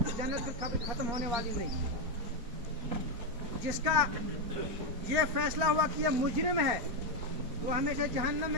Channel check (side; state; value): left; late; 4.4 ms